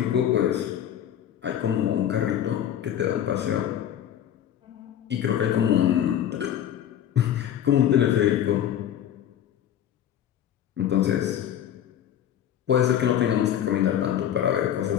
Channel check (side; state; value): right; quieter; 10.4 dB